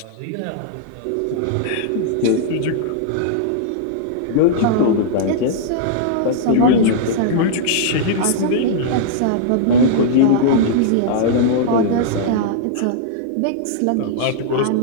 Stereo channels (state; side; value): different; both; correlation -0.01